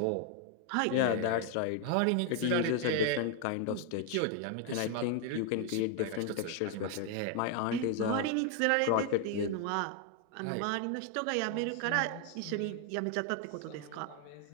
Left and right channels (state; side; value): different; both; correlation 0.01